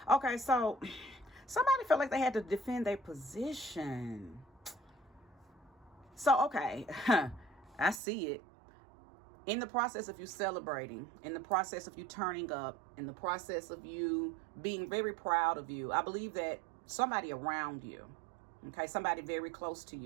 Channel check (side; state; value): left; drops out; at 8.0 s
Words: Okay, so somebody felt like they had to defend their position. So, okay, I see it. In the process of you celebrating, in the process of you turning up, in the process of you being very proud of you, I believe that somebody around you, okay, somebody very close to